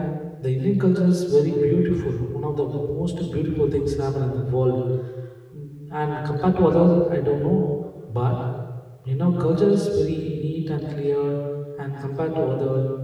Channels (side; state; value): both; identical; correlation 1.00